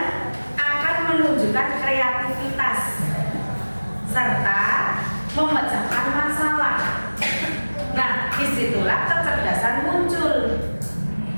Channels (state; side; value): inverted; both; correlation -1.00